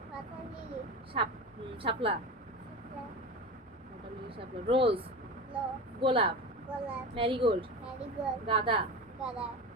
পাতা লিলি. শাপলা, শাপলা. ওয়াটার লিলি, শাপলা, রোজ, লো. গোলাপ, গোলাপ. Marigold, marigold. গাঁদা, গাঁদা.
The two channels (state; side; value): normal; both; correlation 0.27